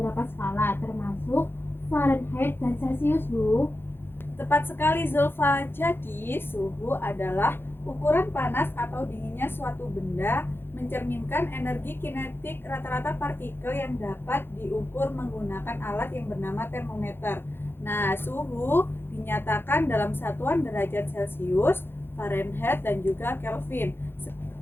skala, termasuk Fahrenheit dan Celcius, Bu. Tepat sekali Zulfa. Jadi suhu adalah ukuran panas atau dinginnya suatu benda, mencerminkan energi kinetik rata-rata partikel yang dapat diukur menggunakan alat yang bernama termometer. Nah, suhu dinyatakan dalam satuan derajat Celcius, Fahrenheit, dan juga Kelvin.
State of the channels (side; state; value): right; late; 0.10 ms